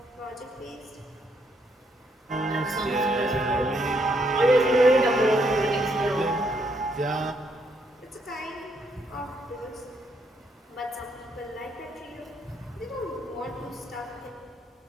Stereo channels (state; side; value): normal; both; correlation 0.74